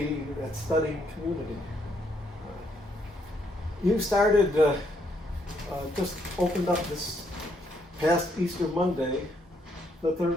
that's studying community. You started, just opened up this past Easter Monday, the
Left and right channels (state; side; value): normal; both; correlation 0.73